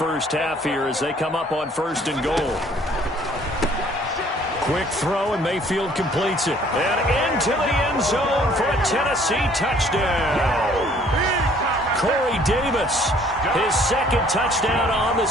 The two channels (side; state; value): both; normal; correlation 0.58